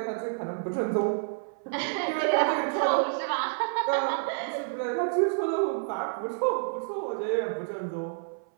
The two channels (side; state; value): left; silent; 59 dB below the other